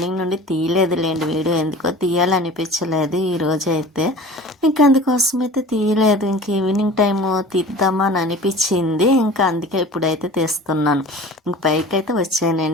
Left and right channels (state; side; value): normal; both; correlation 0.41